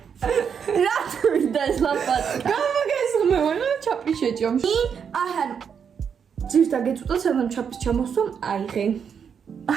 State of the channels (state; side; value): quieter; left; 7.1 dB